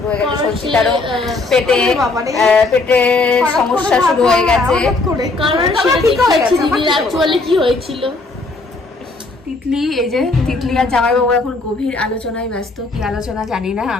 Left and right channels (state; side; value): quieter; right; 3.4 dB